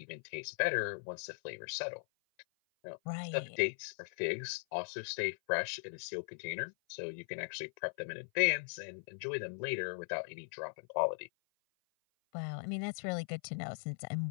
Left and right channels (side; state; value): right; silent; 52 dB below the other